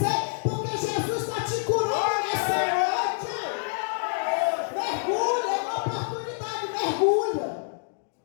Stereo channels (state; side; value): silent; right; digital silence